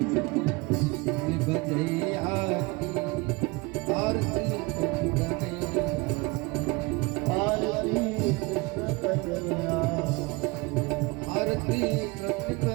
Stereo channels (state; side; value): quieter; left; 25.5 dB